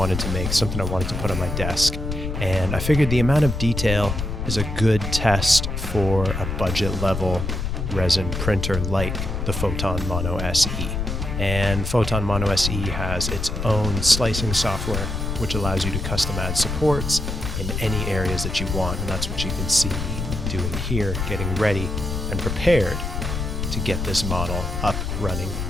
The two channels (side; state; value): left; noise; rumble, 3 dB below the sound